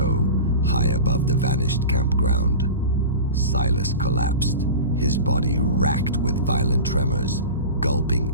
high above the vanished campground. Silas collapsed, his body racked with violent tremors, gulping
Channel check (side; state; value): both; inverted; correlation -0.31